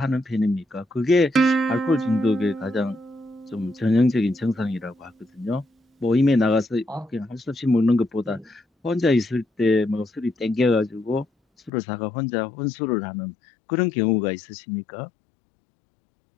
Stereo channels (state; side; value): drops out; right; at 11.7 s